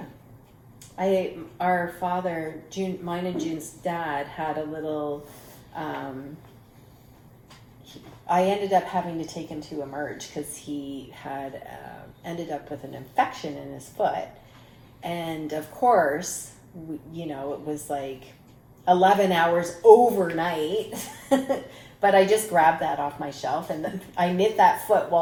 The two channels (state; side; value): identical; both; correlation 1.00